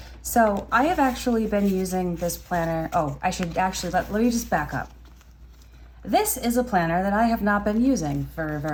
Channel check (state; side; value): identical; both; correlation 1.00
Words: So I have actually been using this planner. Oh, I should actually, let me just back up. This is a planner that I have not been using for